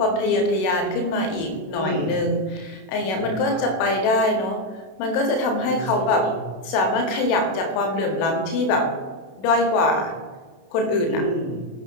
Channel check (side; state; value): right; late; 32 ms